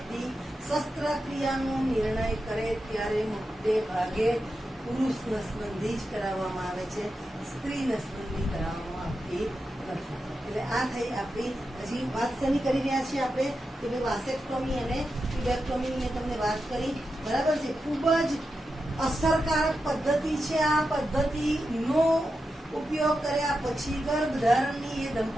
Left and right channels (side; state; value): both; normal; correlation 0.89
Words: શસ્ત્રક્રિયાનો નિર્ણય કરે ત્યારે મોટે ભાગે પુરુષ નસબંધી જ કરાવવામાં આવે છે, સ્ત્રી નસબંધી કરાવવામાં આવતી નથી. એટલે આ થઈ આપણી હજી વાત શેની કરી રહ્યા છીએ આપણે કે ભાઈ વાસેક્ટોમી અને ટ્યુબેક્ટોમીની મેં તમને વાત કરી. બરાબર છે. ખૂબ જ અસરકારક પદ્ધતિ છે. આ પદ્ધતિનો ઉપયોગ કર્યા પછી ગર્ભધારણની એ